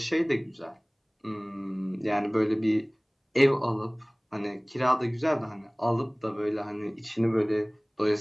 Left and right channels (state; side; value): identical; both; correlation 1.00